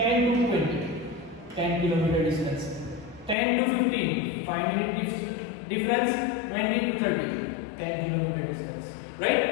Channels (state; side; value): drops out; right; at 3.4 s